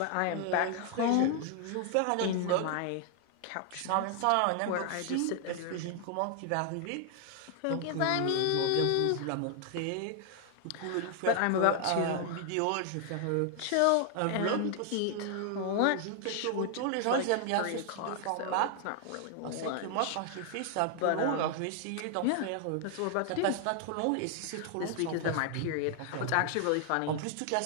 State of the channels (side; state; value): both; different; correlation 0.00